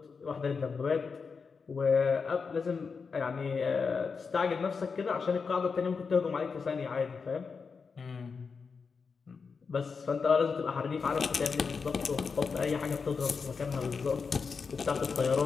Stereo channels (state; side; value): quieter; right; 5.2 dB